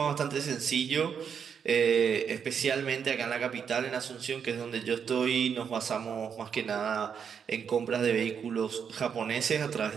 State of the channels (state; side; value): quieter; left; 7.2 dB